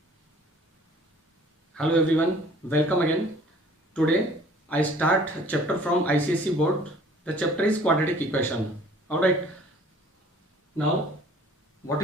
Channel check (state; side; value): normal; both; correlation 0.52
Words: Hello everyone, welcome again. Today I start chapter from ICSE board. The chapter is quadratic equation. Alright. Now what